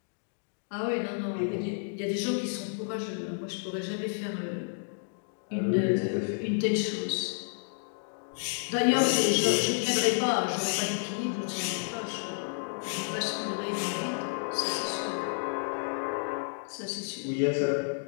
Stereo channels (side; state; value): right; silent; digital silence